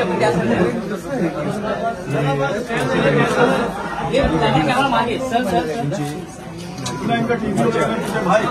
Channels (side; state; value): both; identical; correlation 1.00